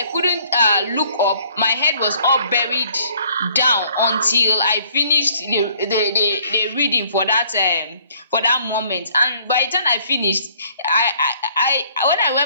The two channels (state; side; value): inverted; both; correlation -0.60